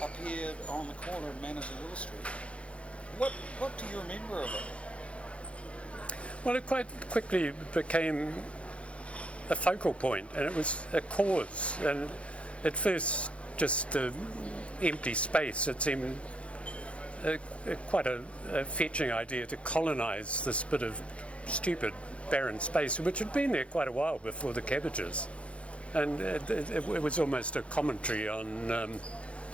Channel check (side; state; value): right; late; 0.061 ms